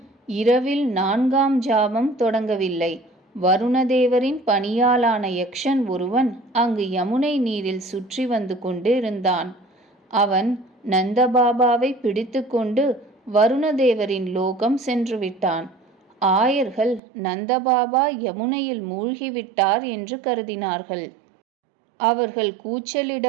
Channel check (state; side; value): drops out; left; at 17.0 s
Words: இரவில் 4ஆம் ஜாமம் தொடங்கவில்லை. வருணதேவரின் பணியாளான யக்ஷன் ஒருவன் அங்கு யமுனை நீரில் சுற்றி வந்து கொண்டு இருந்தான். அவன் நந்தபாபாவை பிடித்து கொண்டு வருணதேவரின் லோகம் சென்றுவிட்டான். ஆயர்கள் நந்தபாபா யமுனையில் மூழ்கிவிட்டார் என்று கருதினார்கள். அவர்கள்